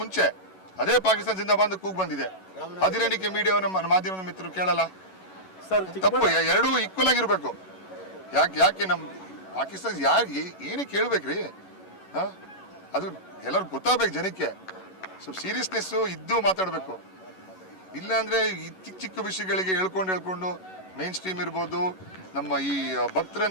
ಮುಂಚೆ ಅದೇ ಪಾಕಿಸ್ತಾನ ಜಿಂದಾಬಾದ್ ಕೂಗ್ ಬಂದಿದೆ. ಅದೇನಕ್ಕೆ ಮೀಡಿಯಾ ನಮ್ಮ ಮಾಧ್ಯಮದ ಮಿತ್ರರು ಕೇಳಲ್ಲ? ತಪ್ಪು. ಎರಡೂ ಈಕ್ವಲ್ ಆಗಿರ್ಬೇಕು. ಯಾಕೆ ನಮ್ಮ ಪಾಕಿಸ್ತಾನ ಯಾಕೆ ಏನಕ್ಕೆ ಕೇಳ್ಬೇಕ್ರಿ? ಅದು ಎಲ್ಲರಿಗೂ ಗೊತ್ತಾಗಬೇಕು ಜನಕ್ಕೆ. ಸ್ವಲ್ಪ ಸೀರಿಯಸ್ನೆಸ್ಸು ಇದ್ದು ಮಾತಾಡಬೇಕು. ಇಲ್ಲಾಂದ್ರೆ ಈ ಚಿಕ್ಕ ಚಿಕ್ಕ ವಿಷಯಗಳಿಗೆ ಹೇಳ್ಕೊಂಡು ಮೇನ್ ಸ್ಟ್ರೀಮ್ ಇರ್ಬೋದು, ನಮ್ಮ ಈ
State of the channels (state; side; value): late; right; 11 ms